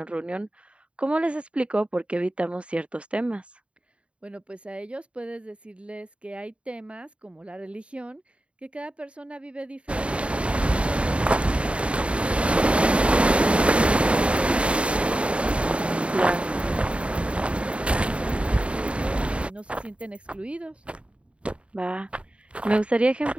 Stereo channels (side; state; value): left; late; 0.060 ms